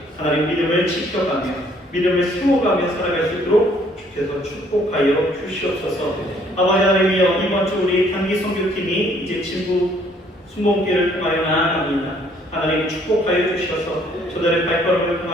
하나님 믿음을 지켜가며 믿음을 세워가며 살아갈 수 있도록 주께서 축복하여 주시옵소서. 아버지 하나님이여 이번 주 우리 단기 선교팀이 이제 진부 순복음교회를 통하여 나아갑니다. 하나님 축복하여 주셔서 저들의 발걸음을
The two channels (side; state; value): both; normal; correlation 0.63